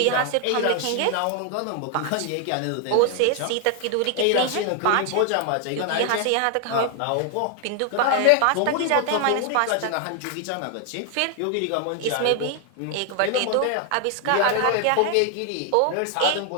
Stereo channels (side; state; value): both; different; correlation 0.00